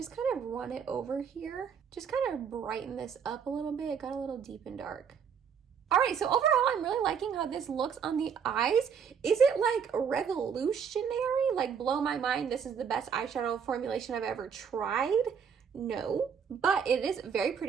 kind of run it over here. Just kind of brighten this up a little bit. It got a little deep and dark. All right, so overall, I'm really liking how this looks on the eyes. Is it like revolutionary? Like blow my mind, this is the best eyeshadow formulation I've ever tried? No, but it is very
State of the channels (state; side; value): quieter; left; 7.1 dB